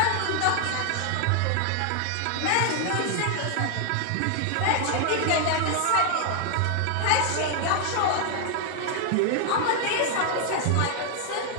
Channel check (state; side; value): different; both; correlation 0.00